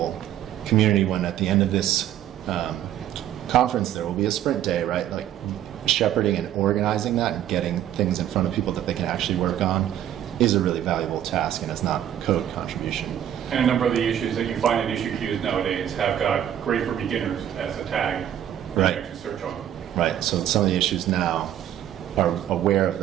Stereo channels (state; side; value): quieter; left; 11.0 dB